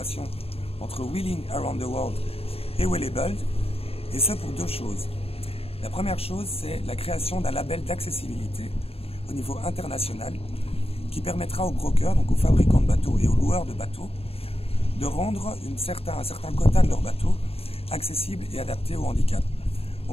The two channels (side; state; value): right; late; 0.28 ms